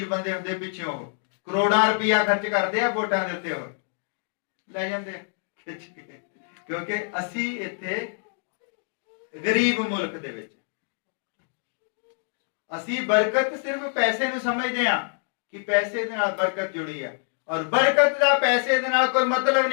ਬੰਦੇ ਹੁੰਦੇ ਪਿੱਛੇ, ਉਹ ਕਰੋੜਾਂ ਰੁਪਇਆ ਖਰਚ ਕਰਦੇ ਆ ਵੋਟਾਂ ਦੇ ਉੱਤੇ, ਉਹ ਲੈ ਜਾਂਦੇ ਖਿੱਚ ਕੇ। ਕਿਉਂਕਿ ਅਸੀਂ ਇੱਥੇ ਗਰੀਬ ਮੁਲਕ ਦੇ ਵਿੱਚ ਅਸੀਂ ਬਰਕਤ ਸਿਰਫ ਪੈਸੇ ਨੂੰ ਸਮਝਦੇ ਹਾਂ ਕਿ ਪੈਸੇ ਦੇ ਨਾਲ ਬਰਕਤ ਜੁੜੀ ਹੈ, ਔਰ ਬਰਕਤ ਦਾ ਪੈਸੇ ਦੇ ਨਾਲ ਕੋਈ ਮਤਲਬ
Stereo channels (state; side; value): silent; right; 61 dB below the other